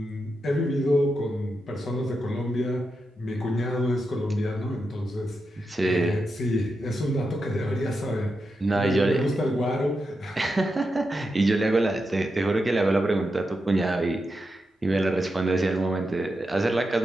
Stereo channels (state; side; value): normal; both; correlation 0.87